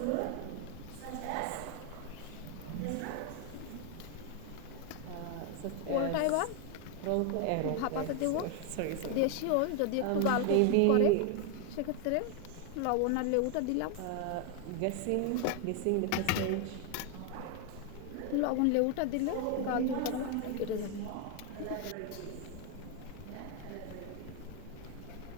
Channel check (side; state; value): both; different; correlation 0.01